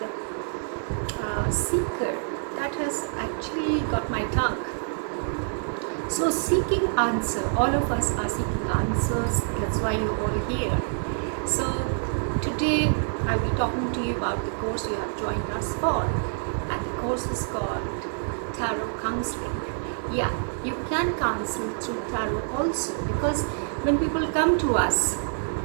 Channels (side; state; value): left; silent; 60 dB below the other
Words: seeker that has actually got my tongue. So seeking answer, all of us are seeking answers, that's why you're all here. So today I'll be talking to you about the course you have joined us for, and the course is called Tarot Counseling. Yeah, you can counsel through tarot also, because when people come to us,